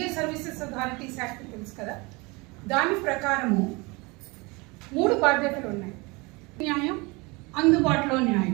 services authorities act తెలుసు కదా, దాని ప్రకారము 3 బాధ్యతలు ఉన్నాయి. న్యాయం, అందుబాటులో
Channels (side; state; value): left; quieter; 26.1 dB